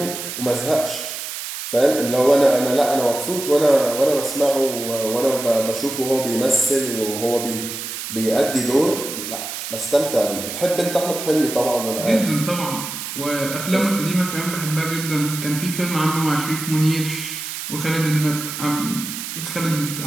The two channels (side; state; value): right; noise; hiss, 7 dB below the sound